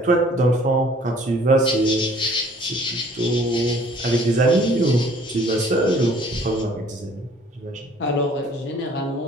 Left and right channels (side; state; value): both; normal; correlation 0.56